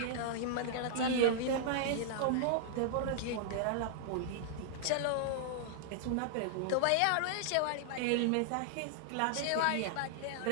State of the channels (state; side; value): different; both; correlation -0.01